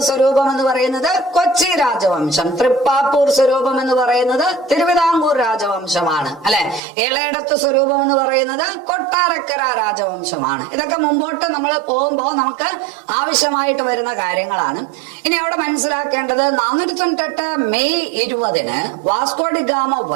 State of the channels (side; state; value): left; drops out; at 6.8 s